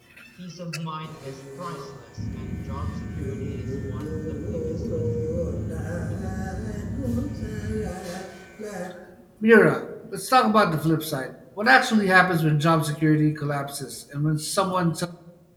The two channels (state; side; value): identical; both; correlation 1.00